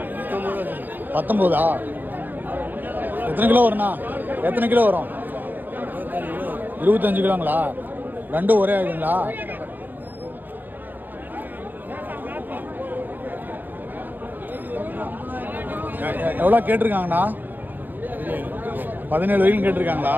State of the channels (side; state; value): left; late; 0.090 ms